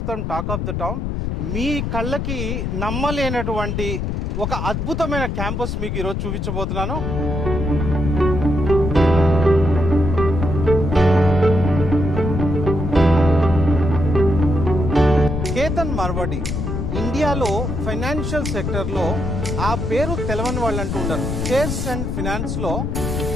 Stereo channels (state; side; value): noise; left; rumble, 2 dB below the sound